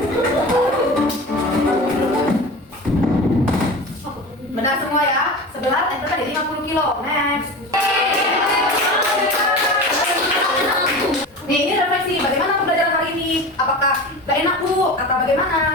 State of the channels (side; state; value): both; normal; correlation 0.32